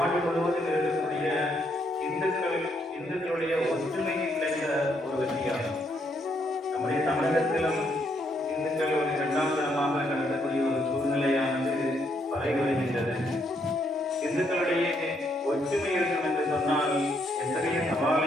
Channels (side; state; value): both; normal; correlation 0.74